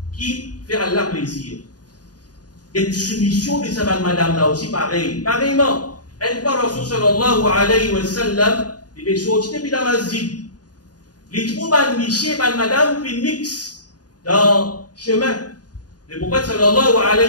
qui fait Allah plaisir. Et soumission de sa madame là aussi pareil, pareillement. Une fois Rasul sallallahu alayhi wa sallam il est sorti depuis la masjid. Les troupes de Miché et madame fait mix dans le chemin. Le prophète sallallahu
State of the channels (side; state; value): right; late; 0.69 ms